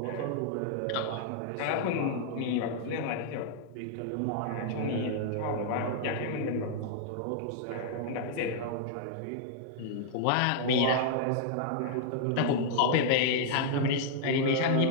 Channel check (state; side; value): different; both; correlation -0.01